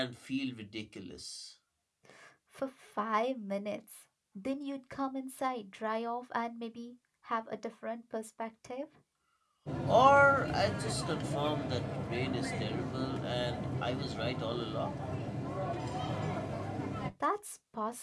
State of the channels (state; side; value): identical; both; correlation 1.00